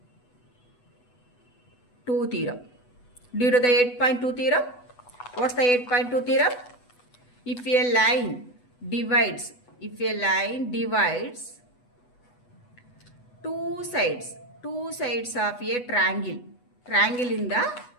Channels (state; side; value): late; right; 8.1 ms